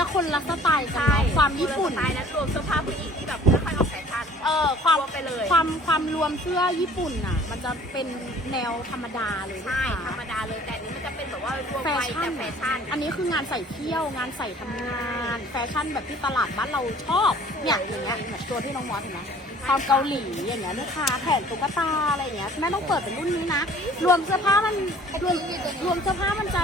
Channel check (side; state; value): both; normal; correlation 0.52